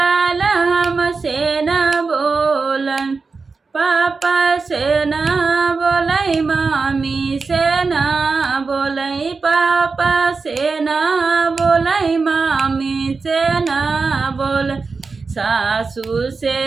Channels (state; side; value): quieter; left; 4.4 dB